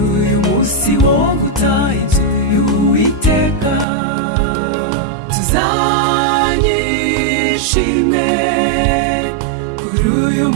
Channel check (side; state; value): left; drops out; at 3.9 s